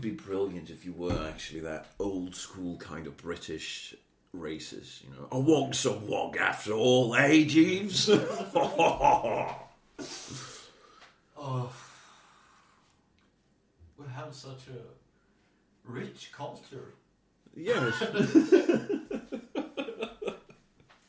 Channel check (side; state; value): both; identical; correlation 1.00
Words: be brilliant if you were actually that old school kind of British racist, you know. A wog's a wog after all, eh, Jeeves? Oh, we have such a rich culture. Yes.